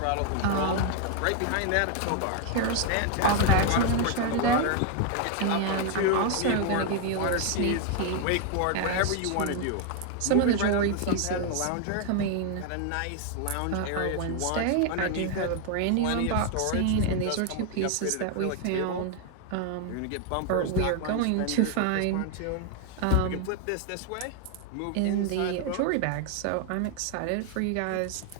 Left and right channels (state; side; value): different; both; correlation 0.00